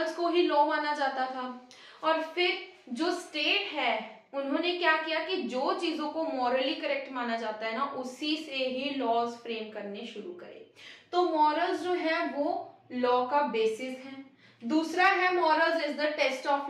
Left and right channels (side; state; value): both; identical; correlation 1.00